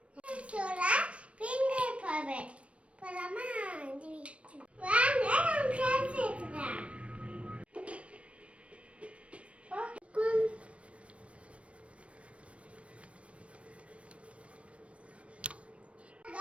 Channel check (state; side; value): late; left; 0.062 ms